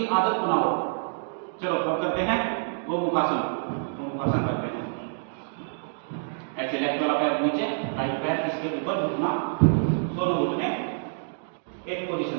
आदत बनाओ। चलो अब करते हैं वो मुखासन। वो मुखासन करते हैं ऐसे, लेफ्ट वाला पैर नीचे, राइट पैर इसके ऊपर, घुटना, दोनों घुटने एक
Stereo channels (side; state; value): left; silent; digital silence